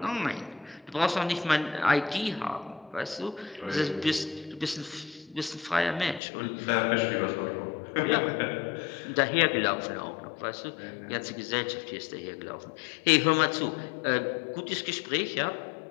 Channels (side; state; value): right; drops out; at 6.2 s